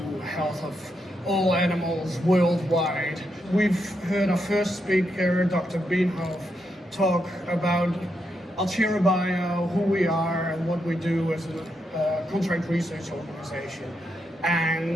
health of all animals worldwide. We've heard our first speaker, Dr. Bienhoff, talk about AlcheraBio, who we are and what we do as a contract research organization,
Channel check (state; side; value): normal; both; correlation 0.82